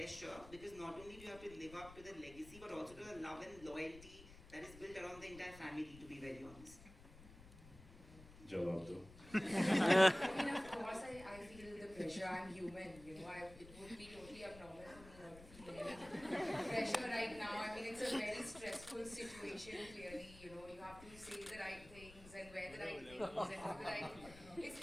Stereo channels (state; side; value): noise; left; rumble, 18 dB below the sound